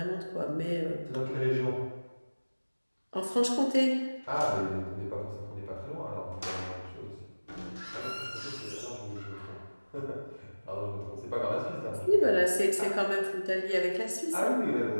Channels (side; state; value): both; inverted; correlation -1.00